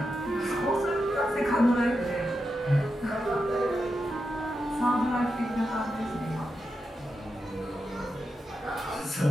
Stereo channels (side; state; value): both; normal; correlation 0.87